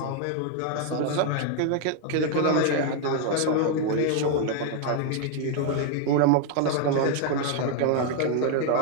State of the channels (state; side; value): different; both; correlation 0.00